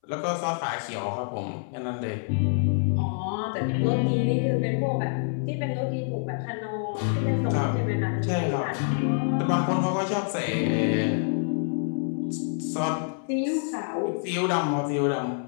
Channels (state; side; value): silent; right; 60 dB below the other